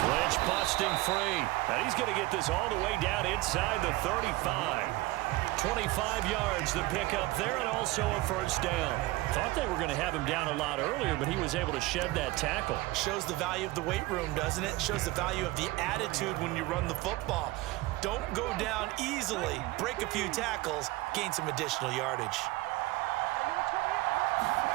Lynch busting free. And he's going to get this all the way down inside the 35. 25 yards the pickup there, and also a 1st down. Thought they were going to have him down a lot earlier, but he was able to shed that tackle. Shows the value of the weight room, doesn't it? Shows the value of the attitude when you run the football. Don't go down easily. Break a few tackles. Gain some additional yardage.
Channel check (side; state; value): left; quieter; 19.7 dB